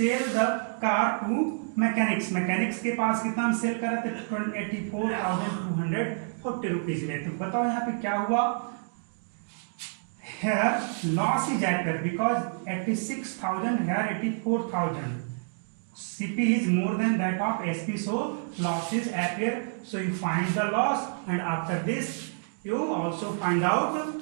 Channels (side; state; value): left; silent; digital silence